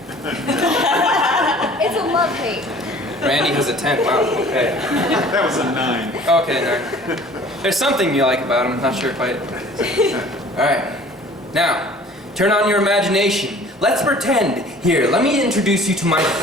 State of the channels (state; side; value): normal; both; correlation 0.49